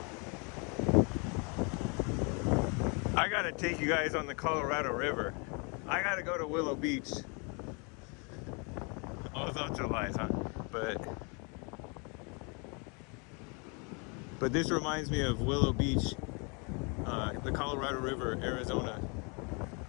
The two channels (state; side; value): quieter; right; 33.4 dB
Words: I gotta take you guys on the Colorado River. I gotta go to Willow Beach. All thoughts are lies, huh? But this reminds me of Willow Beach, the Colorado River, Arizona,